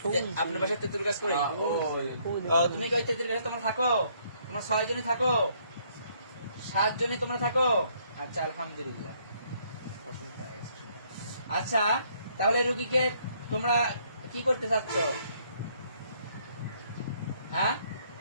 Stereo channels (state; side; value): inverted; both; correlation -0.67